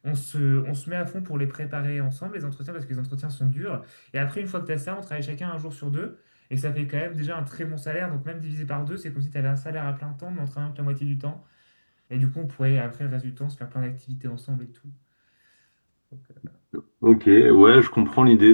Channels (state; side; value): inverted; both; correlation -1.00